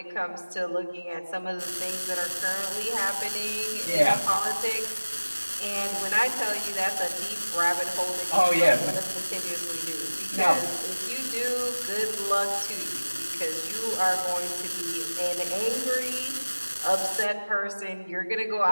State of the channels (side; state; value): both; inverted; correlation -1.00